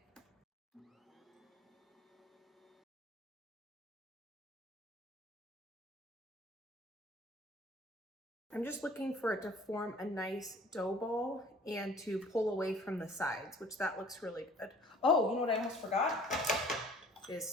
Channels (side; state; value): both; normal; correlation 0.51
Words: I'm just looking for it to form a nice dough ball and to pull away from the sides, which that looks really good. Oh, you know what I almost forgot? Is